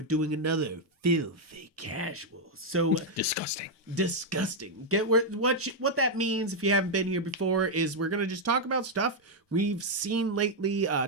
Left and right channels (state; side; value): normal; both; correlation -0.01